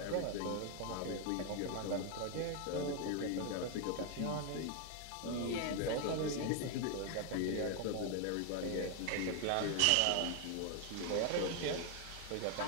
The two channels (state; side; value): different; both; correlation 0.00